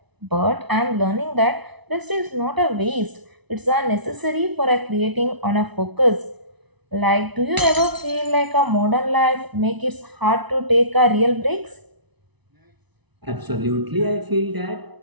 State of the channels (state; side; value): late; left; 1.0 ms